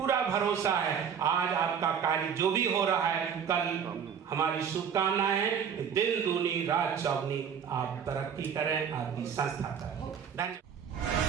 भरोसा है आज आपका कार्य जो भी हो रहा है, कल हमारी शुभकामनाएं हैं, दिन दूनी रात चौगनी आप तरक्की करें, आपकी संस्था करें। धन्यवाद।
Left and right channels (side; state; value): left; quieter; 7.5 dB